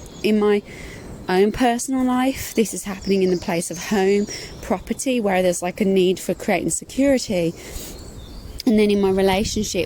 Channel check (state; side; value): identical; both; correlation 1.00